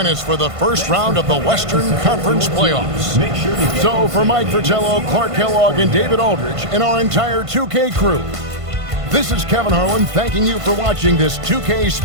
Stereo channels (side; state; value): left; late; 1.5 ms